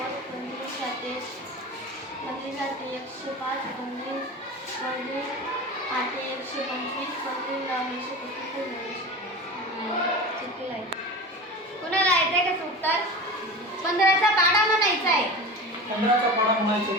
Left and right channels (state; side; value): normal; both; correlation 0.31